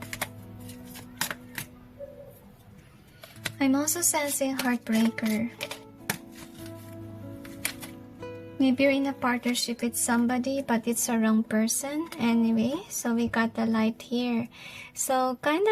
I'm also sensing heartbreaker. Maybe you're in a partnership with somebody, but it's a wrong person. Anyway, so we got the light here. So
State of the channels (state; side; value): identical; both; correlation 1.00